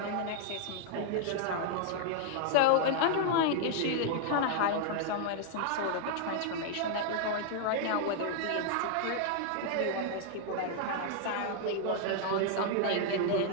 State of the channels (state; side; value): different; both; correlation 0.00